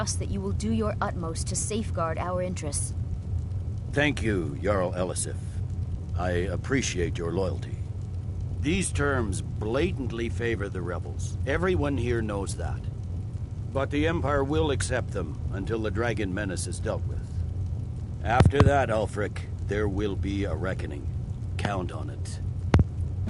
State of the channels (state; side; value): identical; both; correlation 1.00